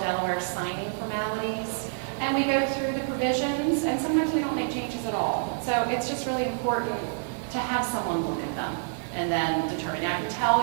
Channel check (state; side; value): silent; left; 60 dB below the other